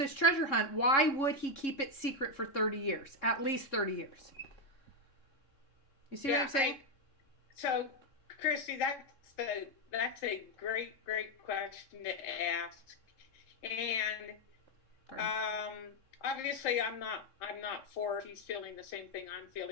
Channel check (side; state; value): right; late; 3.6 ms